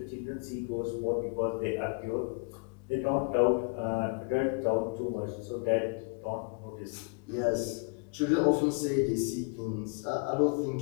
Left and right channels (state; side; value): quieter; right; 37.2 dB